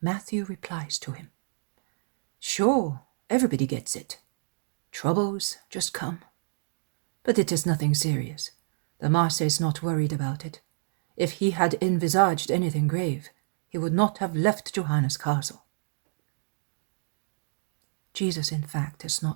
Matthew replies to him, Sure, everybody gets it. Troubles just come. But it is nothing serious. The master is not worried about it. If he had envisaged anything grave, he would not have left Johanna's castle. Jesus, in fact, is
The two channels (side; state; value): left; silent; digital silence